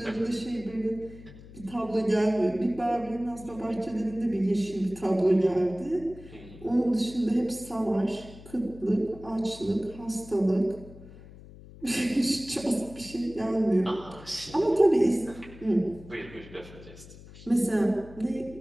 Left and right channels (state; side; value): noise; left; hum, 18 dB below the sound